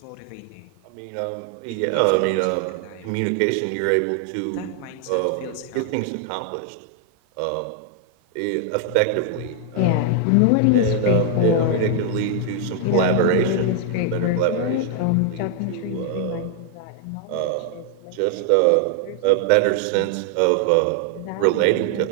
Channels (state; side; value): different; both; correlation 0.00